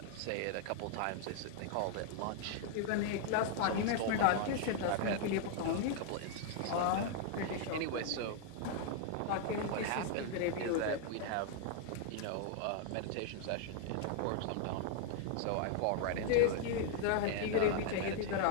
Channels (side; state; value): both; different; correlation 0.00